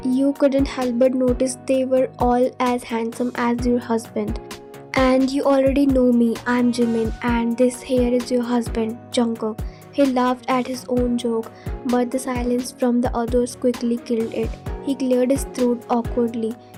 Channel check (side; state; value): both; identical; correlation 1.00